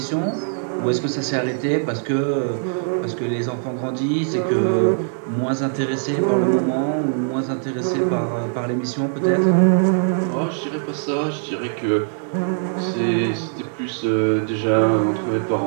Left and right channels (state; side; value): silent; left; 61 dB below the other